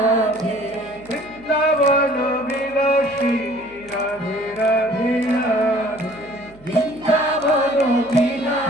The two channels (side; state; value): right; noise; hum, 25 dB below the sound